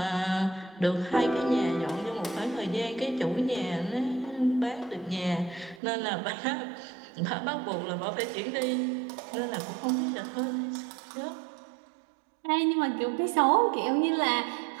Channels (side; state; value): left; drops out; at 5.8 s